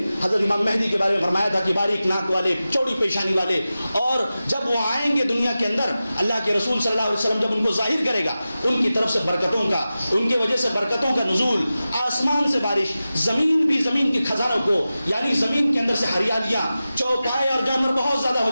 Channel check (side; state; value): both; inverted; correlation -0.94